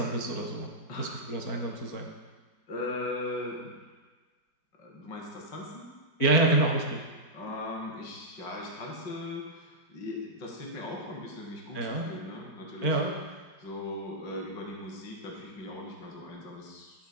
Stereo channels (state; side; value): late; right; 4.5 ms